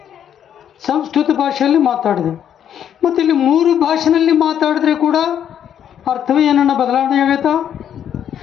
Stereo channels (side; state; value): right; quieter; 9.4 dB